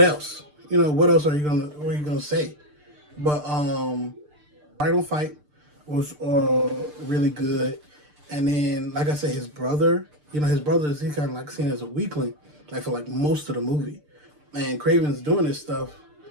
You know, what else are you gonna say? But Final Fight was really good. And then, like I said, his brother, you know, his brother is he kind of like seen as a weakling, like for like most of the movie. And Kraven's doing this stuff.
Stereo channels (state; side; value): late; left; 6.7 ms